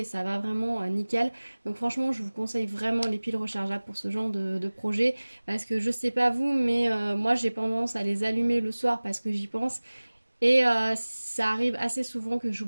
et ça va vraiment nickel. Donc franchement je vous conseille vraiment les piles rechargeables pour ce genre de projet, parce que je sais pas vous, mais moi j'ai tendance à les allumer le soir parce que j'y pense et ça arrive assez souvent que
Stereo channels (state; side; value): inverted; both; correlation -1.00